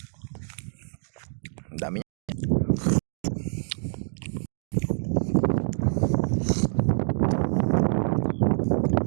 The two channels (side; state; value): left; silent; digital silence